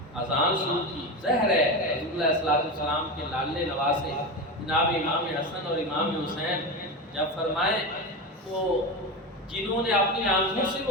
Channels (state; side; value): normal; both; correlation 0.20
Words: اذان شروع کی۔ ظاہر ہے حضور علیہ السلام کے لاڈلے نواسے جناب امام حسن اور امام حسین جب فرمائیں تو جنہوں نے اپنی آنکھوں سے